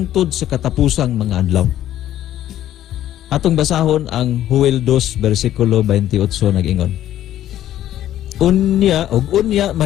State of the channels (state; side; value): quieter; right; 12.4 dB